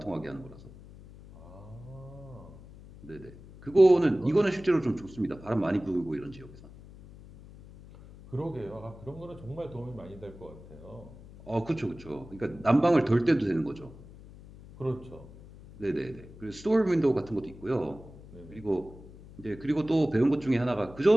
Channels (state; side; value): noise; left; hum, 19 dB below the sound